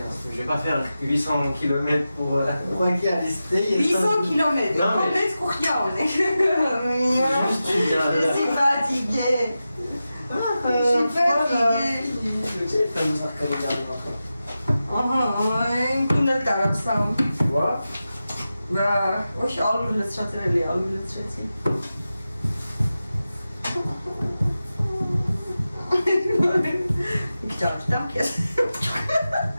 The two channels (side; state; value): both; inverted; correlation -0.93